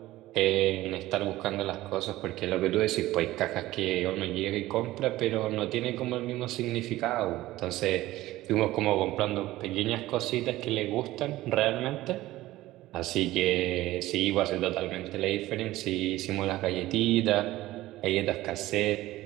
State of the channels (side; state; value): left; quieter; 16.7 dB